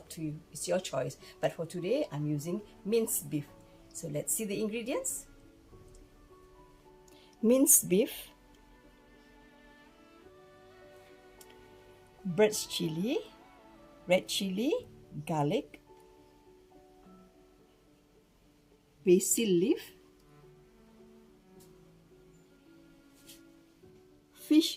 to you. It's your choice. But for today, I'm using minced beef. So let's see the ingredients. Minced beef, bird's chili, red chili, garlic, basil leaf,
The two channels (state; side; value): identical; both; correlation 1.00